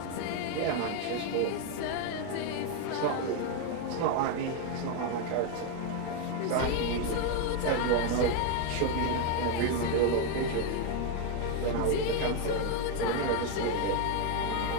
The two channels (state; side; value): different; both; correlation 0.01